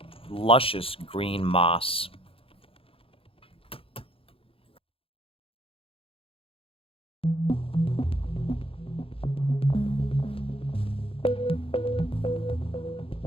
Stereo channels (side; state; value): right; late; 0.27 ms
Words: luscious green moss.